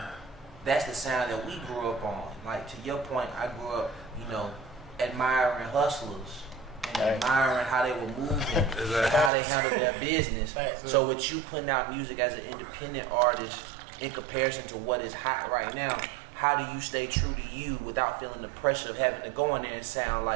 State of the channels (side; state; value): left; drops out; at 9.3 s